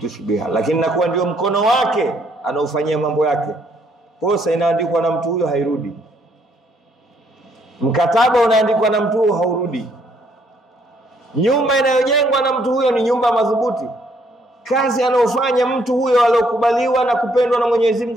biha, lakini nakuwa ndio mkono wake anaufanyia mambo yake. Posa inaandikwa na mtu huyo hairudi, mkataba unaandikwa na mtu huyo haurudi, nyumba inayojengwa na mtu huyo ni nyumba madhubuti. Kazi anayofanya mtu huyo aliyokubaliwa na kupendwa na Mwenyezi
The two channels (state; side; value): normal; both; correlation 0.69